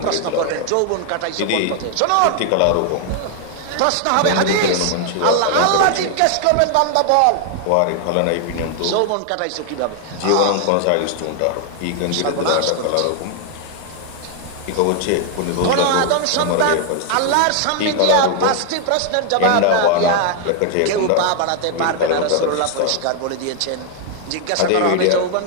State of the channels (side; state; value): both; different; correlation 0.00